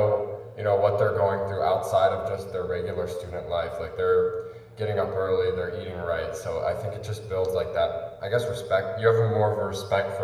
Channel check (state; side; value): identical; both; correlation 1.00